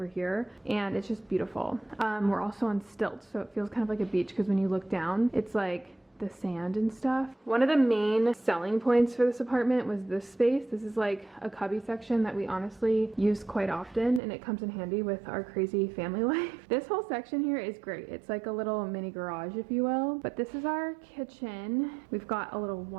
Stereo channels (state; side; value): drops out; left; at 14.2 s